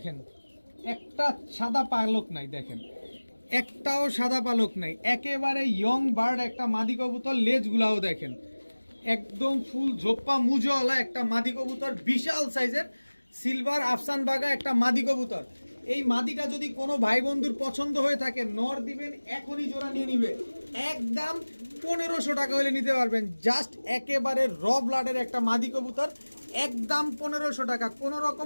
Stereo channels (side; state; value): both; inverted; correlation -1.00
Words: একটা সাদা পালক নাই, দেখেন একটাও সাদা পালক নাই, একেবারে ইয়ং বার্ড একটা মাদি কবুতর। লেজগুলাও দেখেন, একদম ফুল ঝোপ্পা মুজওয়ালা একটা মাদি কবুতর, বিশাল সাইজের সিলভার আফসান বাঘা একটা মাদি কবুতর। এই মাদিটা যদি কোনো ভাই বন্ধুর পছন্দ হয়ে থাকে, নর দিবেন এখনই জোড়া নিয়ে নিবে, একদম 1500 টাকা হলে নিতে পারবেন। জাস্ট একেবারে র ব্লাডের একটা মাদি কবুতর, একদম 1500 টাকা। কোনো